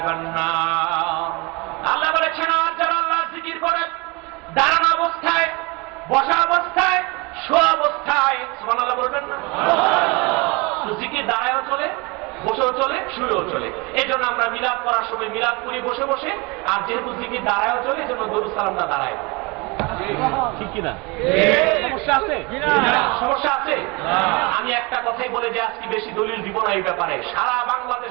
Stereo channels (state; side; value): quieter; left; 27.0 dB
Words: নার। আল্লাহ বলেছেন আর যারা আল্লাহর জিকির করে দাঁড়ানো অবস্থায়, বসা অবস্থায়, শোয়া অবস্থায়, সুবহানাল্লাহ বলবেন না? জিকির দাঁড়ায়ও চলে, বসেও চলে, শুয়েও চলে। এই জন্য আমরা মিলাদ করার সময় মিলাদ করি বসে বসে, আর যেহেতু জিকির দাঁড়ায়ও চলে এই জন্য দরুদ সালামটা দাঁড়ায়। ঠিক কিনা? সমস্যা আছে? সমস্যা আছে? আমি একটা কথাই বলে যে আজকে বেশি দলিল দিব না এই ব্যাপারে। সারা